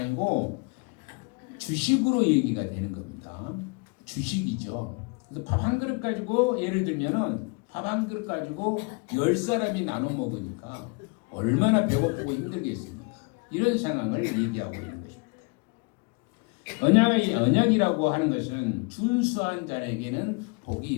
주식으로 얘기가 되는 겁니다. 주식이죠. 그래서 밥 한 그릇 가지고 예를 들면은 밥 한 그릇 가지고 10사람이 나눠 먹으니까 얼마나 배고프고 힘들겠습니까? 이런 상황을 얘기하고 있는 것입니다. 언약이라고 하는 것은 준수한 자에게는 복이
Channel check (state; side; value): quieter; right; 31.7 dB